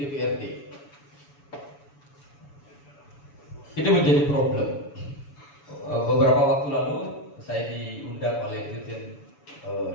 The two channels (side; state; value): right; late; 7.1 ms